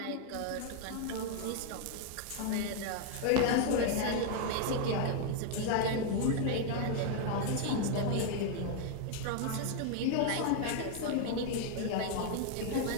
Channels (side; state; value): both; different; correlation 0.00